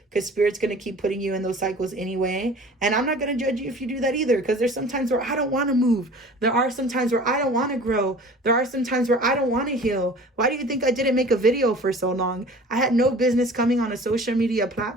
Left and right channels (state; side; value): normal; both; correlation 0.44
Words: because Spirit's going to keep putting you in those cycles anyway. And I'm not going to judge you if you do that either because there's some times where I don't want to move. There are some times where I don't want to grow. There are some times where I don't want to heal. Why do you think I didn't make a video for so long? I had no business coming on a social media